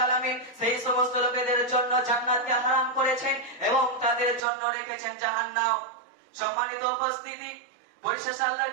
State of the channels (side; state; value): left; drops out; at 4.4 s